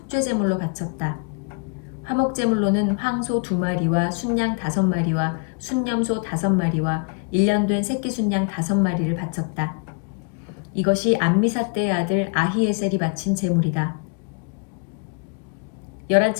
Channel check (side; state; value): right; quieter; 37.0 dB